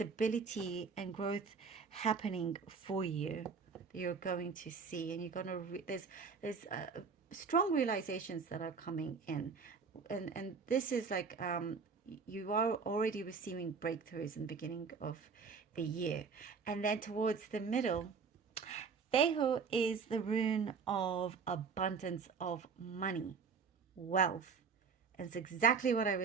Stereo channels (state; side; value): quieter; left; 5.4 dB